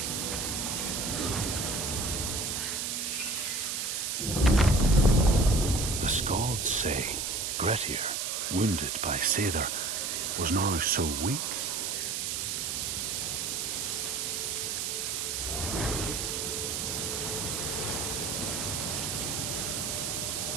The Skalds say Grettir, wounded by Seidr, was now so weak.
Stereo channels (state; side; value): noise; right; hiss, 1 dB below the sound